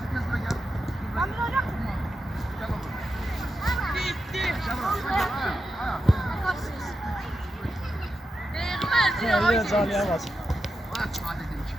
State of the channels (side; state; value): both; normal; correlation 0.88